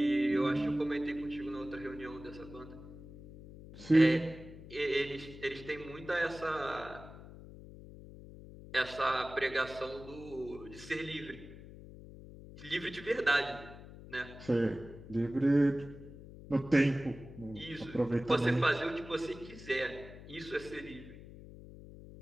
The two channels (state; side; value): noise; left; hum, 16 dB below the sound